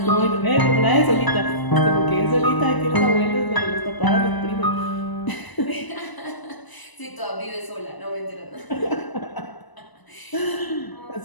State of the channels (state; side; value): late; right; 1.0 ms